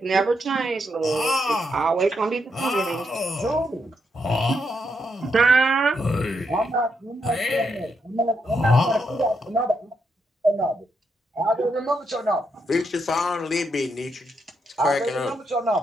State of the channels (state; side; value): normal; both; correlation 0.80